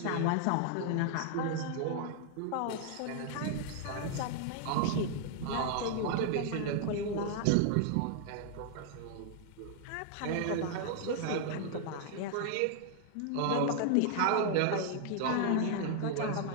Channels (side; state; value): both; different; correlation 0.00